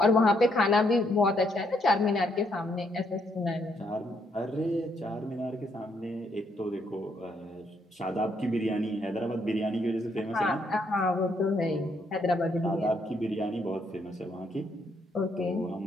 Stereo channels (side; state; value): both; normal; correlation 0.73